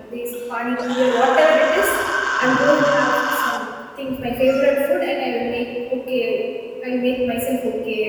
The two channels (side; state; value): both; identical; correlation 1.00